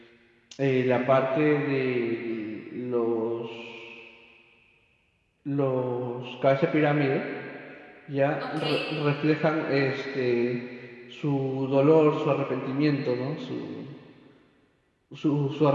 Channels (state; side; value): identical; both; correlation 1.00